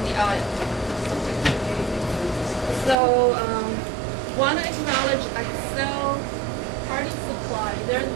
the aisle. So want to acknowledge Accel Party Supply. They're the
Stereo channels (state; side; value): drops out; left; at 3.0 s